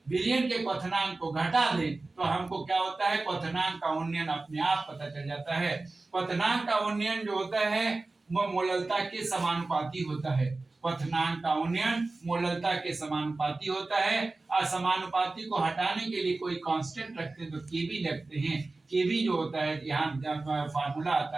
विलयन के क्वथनांक को घटा दें तो हमको क्या होता है, क्वथनांक का उन्नयन अपने आप पता चल जाता है। क्वथनांक का उन्नयन जो होता है वो मोललता के समानुपाती होता है। क्वथनांक का उन्नयन मोललता के समानुपाती होता है। असमानुपाती को हटाने के लिए कोई कांस्टेंट रखते हैं तो केबी लगते हैं। केबी जो होता है, यहाँ फार्मूला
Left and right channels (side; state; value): left; quieter; 3.3 dB